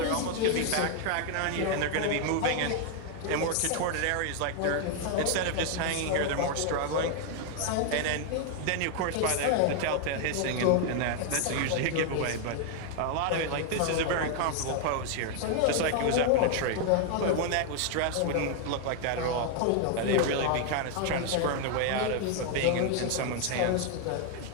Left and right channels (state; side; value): different; both; correlation 0.00